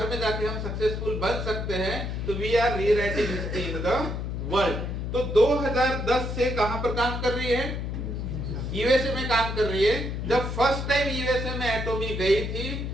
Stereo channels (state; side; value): noise; left; hum, 4 dB below the sound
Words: में जाके हम सक्सेसफुल बन सकते हैं, तो we are rewriting history in the world. तो 2010 से कहां पर काम कर रही है? यूएसए में काम कर रही है। जब फर्स्ट टाइम यूएसए में एटोमी गई थी